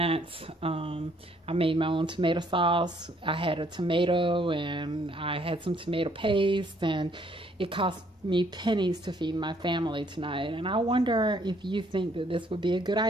I made my own tomato sauce. I had a tomato, and I had some tomato paste, and it cost me pennies to feed my family tonight. And I wonder if you think that this would be a good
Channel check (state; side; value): normal; both; correlation 0.66